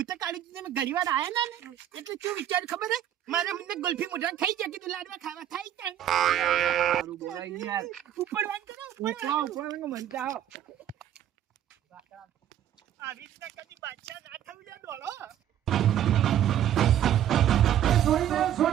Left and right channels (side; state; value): left; quieter; 11.0 dB